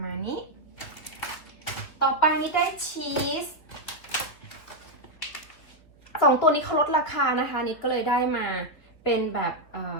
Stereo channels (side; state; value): right; late; 3.1 ms